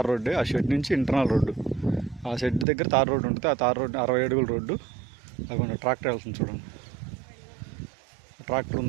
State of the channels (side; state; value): left; drops out; at 2.7 s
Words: రోడ్డే. ఆ షెడ్ నుంచి ఇంటర్నల్ రోడ్డు, ఆ షెడ్ దగ్గర తార్ రోడ్డు ఉంటుంది. ఆ తార్ రోడ్డు 60 అడుగుల రోడ్డు. అక్కడ ట్రాక్టర్ వెళ్తుంది చూడండి. ట్రాక్టర్